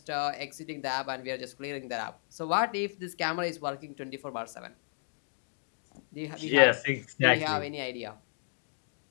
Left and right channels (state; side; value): silent; right; digital silence